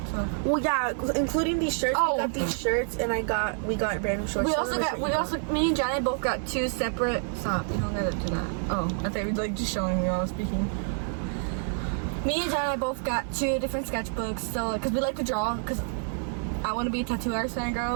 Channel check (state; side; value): silent; left; 57 dB below the other